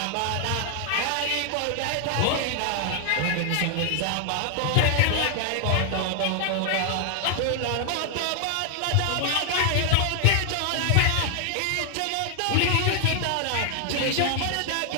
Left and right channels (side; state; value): both; different; correlation 0.00